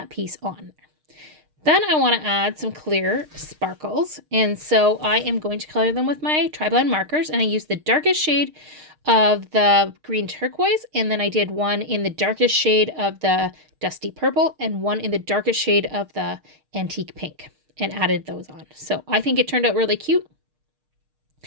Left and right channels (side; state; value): left; late; 6.5 ms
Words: piece on. Then I want to add some clear sparkles. And so I am going to color them with my tri-blend markers. And I used the darkest shade of the green turquoise. And then I did one in the darkest shade of the dusty purple and one in the darkest shade of the antique pink, and added those on. So I think it turned out really cute.